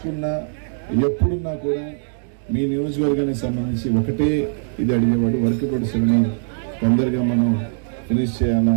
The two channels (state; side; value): silent; left; digital silence